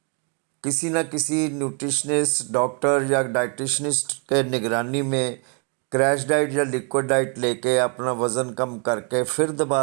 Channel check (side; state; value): left; quieter; 37.1 dB